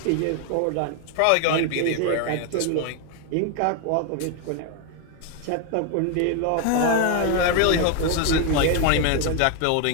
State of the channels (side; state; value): both; different; correlation 0.01